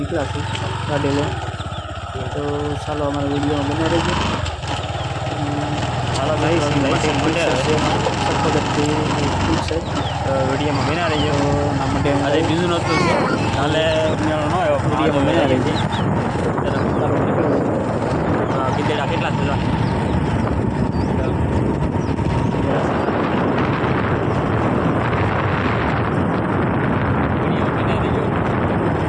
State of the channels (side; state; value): both; identical; correlation 1.00